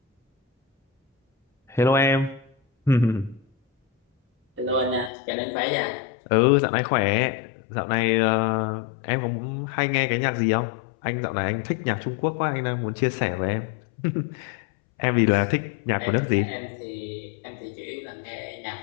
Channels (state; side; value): drops out; right; at 5.1 s